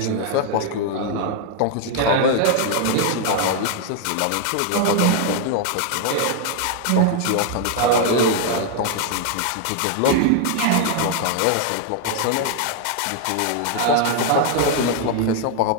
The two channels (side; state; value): both; different; correlation 0.00